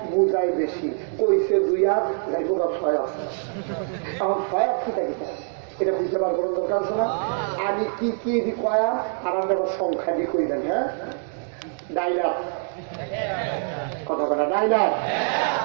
বুঝাই বেশি, কইছে দুই হাত, যাইব 6 হাত। এখন 6 হাত কি থাকে এটা বুঝতে পারবো দরকার আছে না? আমি কি কি কয়াম আর আমরা সংখ্যা দিয়ে কইবেন। হ্যাঁ, ডাইলার কথা কথা, ডাইলার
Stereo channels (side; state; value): left; silent; digital silence